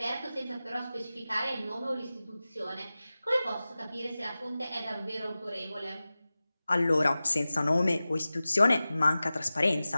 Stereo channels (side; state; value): both; inverted; correlation -0.96